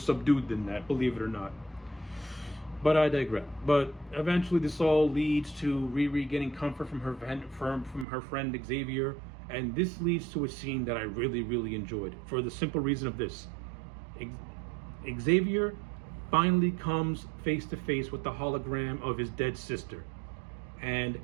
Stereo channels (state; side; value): drops out; left; at 8.1 s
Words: than that, believe it or not. But I digress. But eventually this all leads to Riri getting comfort from her friend Xavier. And this leads to a scene that I really, really enjoyed for the simple reason of this. Xavier finally comes face to face with the hologram of his dead sister. And